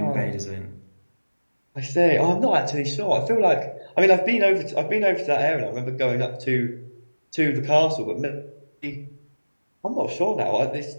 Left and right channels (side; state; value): both; inverted; correlation -1.00